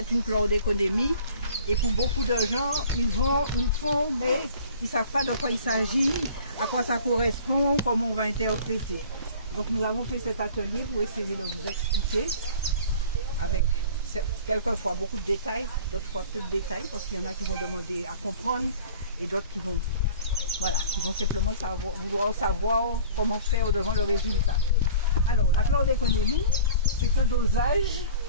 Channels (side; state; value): both; inverted; correlation -0.46